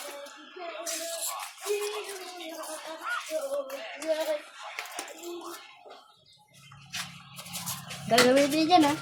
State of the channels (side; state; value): both; identical; correlation 1.00